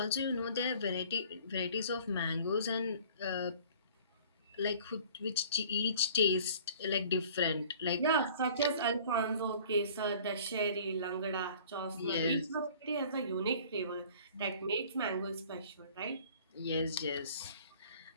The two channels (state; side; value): inverted; both; correlation -0.49